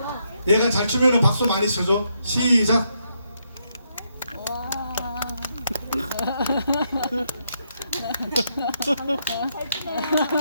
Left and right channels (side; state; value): both; inverted; correlation -0.78